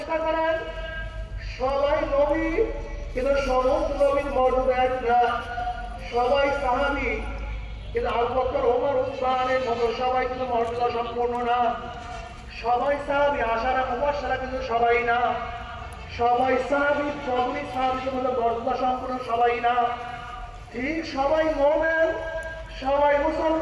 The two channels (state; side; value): identical; both; correlation 1.00